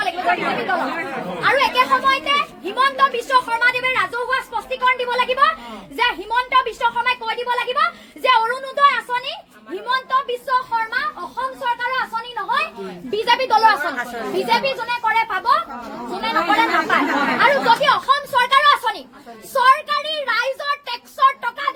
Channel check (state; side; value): identical; both; correlation 1.00